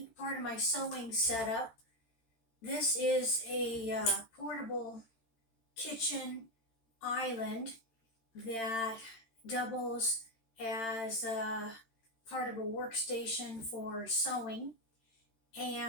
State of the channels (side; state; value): right; late; 13 ms